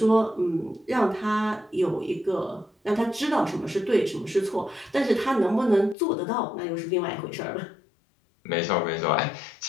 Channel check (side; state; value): right; drops out; at 6.0 s